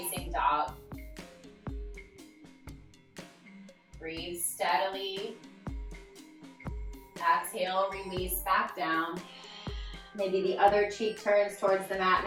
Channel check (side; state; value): both; identical; correlation 1.00